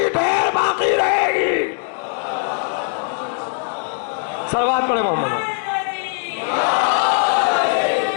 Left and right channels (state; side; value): silent; right; 66 dB below the other